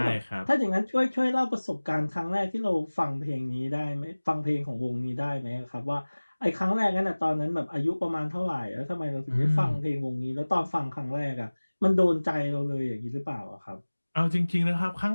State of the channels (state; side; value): inverted; both; correlation -1.00